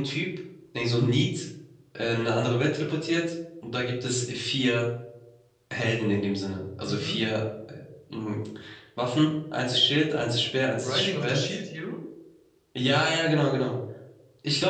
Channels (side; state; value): both; identical; correlation 1.00